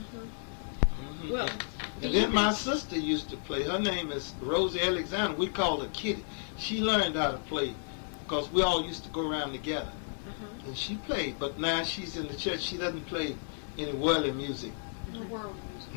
Well, And then my sister used to play. Her name is Rosie Alexander. We called her Kitty. She learned how to play because we all used to go around together. And she played, but now she's in the church. She doesn't play any worldly music. The world music.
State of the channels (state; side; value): silent; right; 56 dB below the other